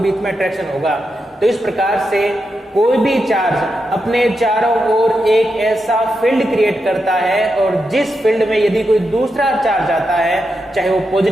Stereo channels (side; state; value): both; normal; correlation 0.86